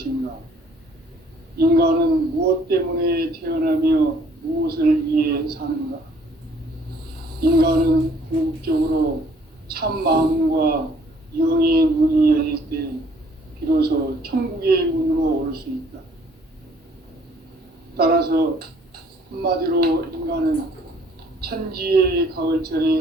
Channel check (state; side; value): normal; both; correlation 0.60